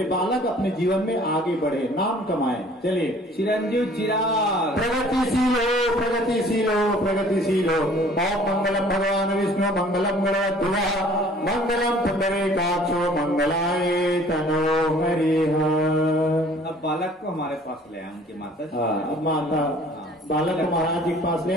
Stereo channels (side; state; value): both; normal; correlation 0.53